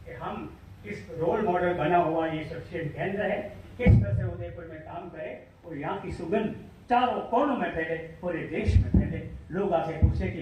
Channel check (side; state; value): both; identical; correlation 1.00